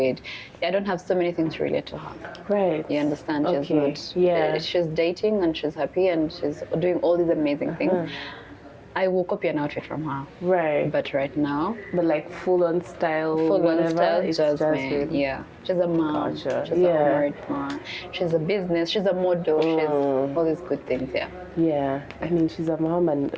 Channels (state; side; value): identical; both; correlation 1.00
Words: I don't have so many things to relate to her. You understand? She's dating and she's happy and she's doing all these amazing things. I will copy an outfit from her. But right now. But like full-on style. It's Jasmine. She's a mom. She's a married mom. She's a business. She's a model. She's all these good things. I mean, she's a mom, and